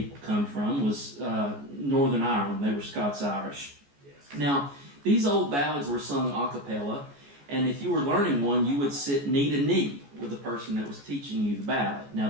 come from, was Northern Ireland. They were Scots-Irish. Now, these old ballads were sung a cappella, and if you were learning one, you would sit knee to knee with the person that was teaching you the ballad. Now,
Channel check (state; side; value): late; left; 14 ms